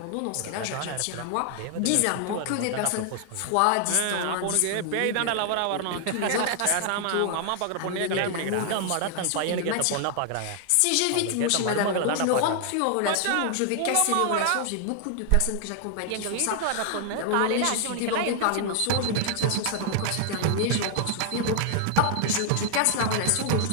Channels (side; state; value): both; different; correlation 0.00